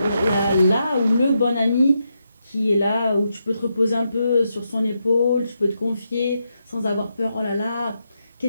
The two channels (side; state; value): both; inverted; correlation -0.83